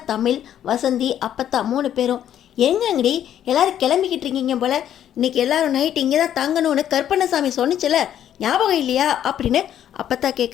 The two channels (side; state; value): right; quieter; 10.5 dB